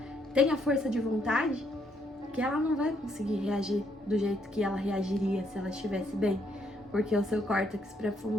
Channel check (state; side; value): normal; both; correlation 0.73